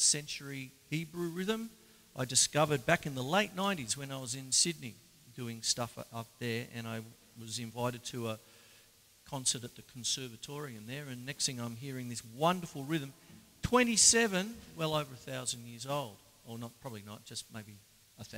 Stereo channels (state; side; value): identical; both; correlation 1.00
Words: century Hebrew rhythm I discovered back in the late 90s when I was in Sydney doing stuff up there, and I was invited to a concert at the Conservatorium there, and next thing I'm hearing this wonderful rhythm, 27, well over 1,000 years old. Or not, probably not, just maybe